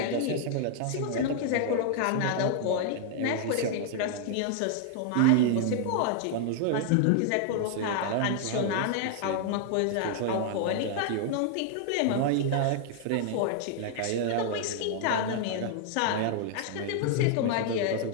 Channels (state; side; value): different; both; correlation 0.00